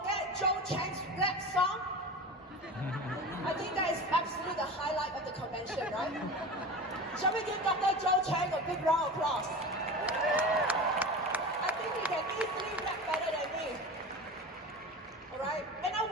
Joe Chang's rap song. I think that is absolutely the highlight of the convention, right? Shall we give Dr. Joe Chang a big round of applause? I think he can easily rap better than me. Alright? And I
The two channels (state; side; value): normal; both; correlation 0.31